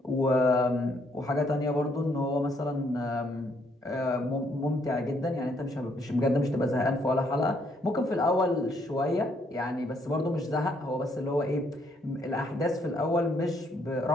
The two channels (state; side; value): normal; both; correlation 0.70